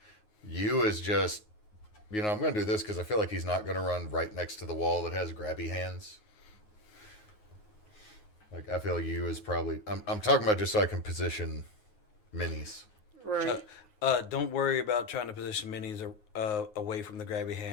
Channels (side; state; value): right; late; 9.5 ms